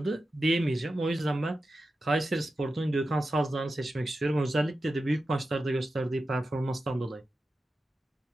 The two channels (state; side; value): normal; both; correlation 0.92